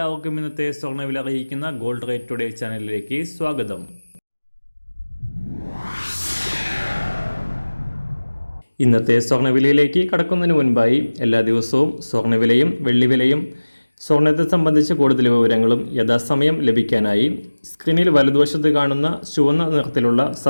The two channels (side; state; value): both; inverted; correlation -1.00